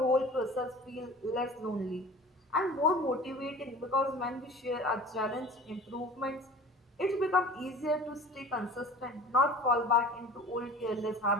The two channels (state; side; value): normal; both; correlation 0.41